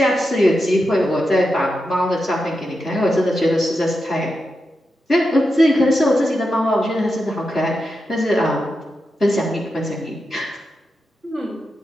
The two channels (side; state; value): both; normal; correlation 0.88